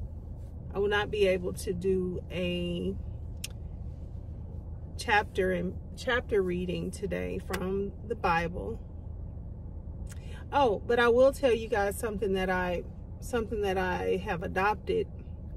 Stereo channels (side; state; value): both; identical; correlation 1.00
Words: a chapter reading today from the Bible. Oh, but I will tell you guys something that I have adopted,